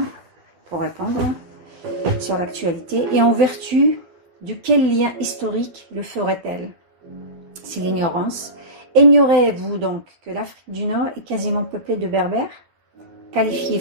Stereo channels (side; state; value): left; late; 12 ms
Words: sur l'actualité. Et en vertu de quel lien historique le ferait-elle? C'est l'ignorance. Ignorez-vous donc que l'Afrique du Nord est quasiment peuplée de berbères, qualifiés